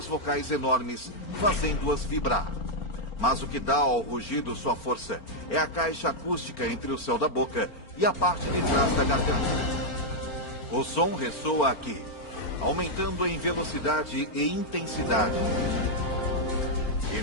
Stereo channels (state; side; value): late; right; 4.4 ms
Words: vocais enormes, fazendo-as vibrar. Mas o que dá ao rugido sua força é a caixa acústica entre o céu da boca e a parte de trás da garganta. O som ressoa aqui, aumentando em velocidade e intensidade. E